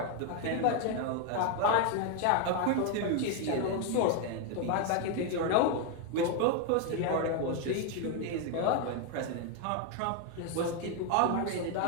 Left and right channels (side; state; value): both; different; correlation 0.01